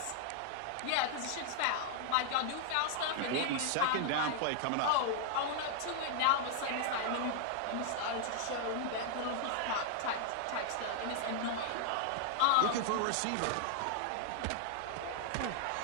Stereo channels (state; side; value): different; both; correlation 0.00